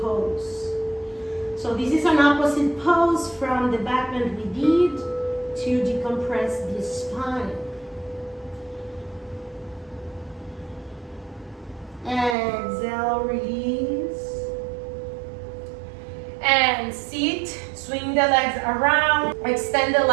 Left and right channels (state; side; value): drops out; left; at 12.4 s